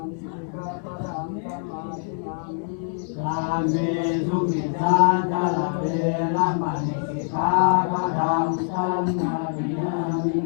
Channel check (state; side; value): silent; right; 62 dB below the other